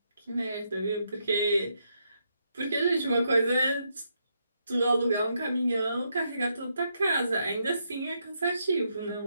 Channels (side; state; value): both; inverted; correlation -0.79